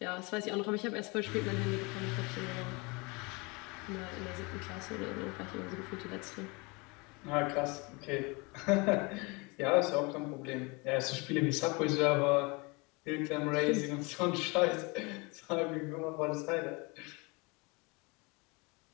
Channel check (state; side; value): quieter; right; 27.9 dB